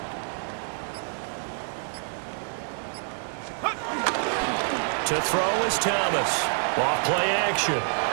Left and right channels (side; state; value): left; silent; 58 dB below the other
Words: To throw is Thomas. Off play action.